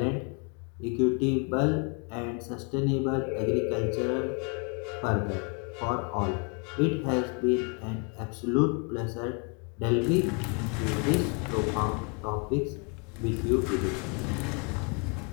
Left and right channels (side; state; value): right; quieter; 35.3 dB